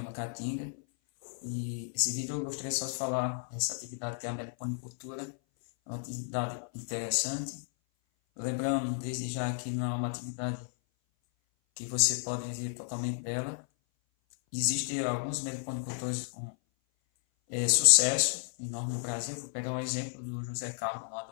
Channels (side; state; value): right; silent; 56 dB below the other